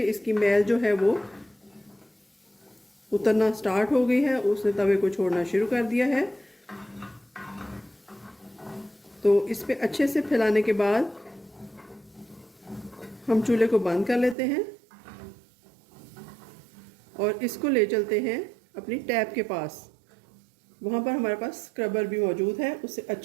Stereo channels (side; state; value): left; drops out; at 14.4 s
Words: इसकी मैल जो है वो उतरना स्टार्ट हो गई है, उसने तवे को छोड़ना शुरू कर दिया है। तो इस पे अच्छे से फैलाने के बाद हम चूल्हे को बंद कर लेते हैं और इसको ले चलते हैं अपनी टैप के पास। वहाँ पर हमारे पास स्क्रबर भी मौजूद है, उससे